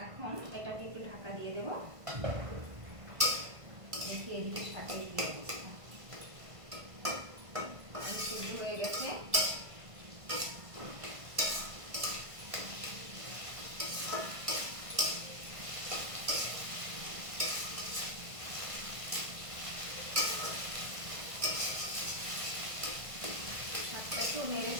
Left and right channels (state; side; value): late; left; 1.5 ms